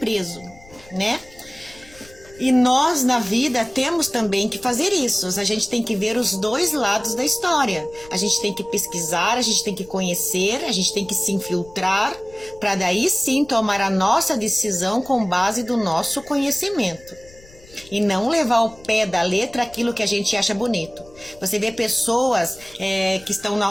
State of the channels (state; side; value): noise; left; rumble, 23 dB below the sound